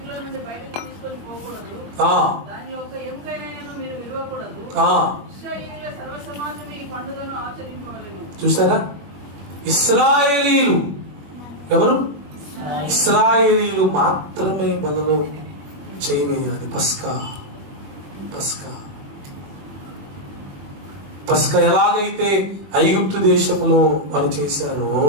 చూసారా, ఇశ్రాయేలీలు ఎవరు? ఇశ్రాయేలీలు మాత్రమే బలలో చేయవేయాలి. పస్కా ఎలాగైతే ఐగుప్తు దేశంలో వారు చేశారో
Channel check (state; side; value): late; left; 21 ms